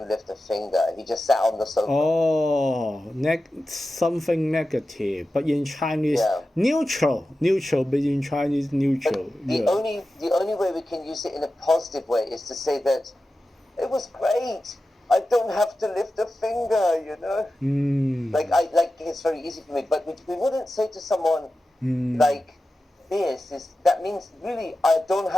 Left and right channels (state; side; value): normal; both; correlation 0.93